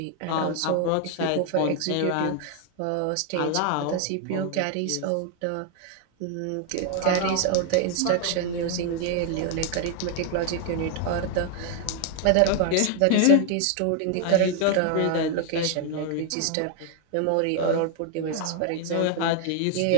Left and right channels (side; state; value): both; different; correlation 0.00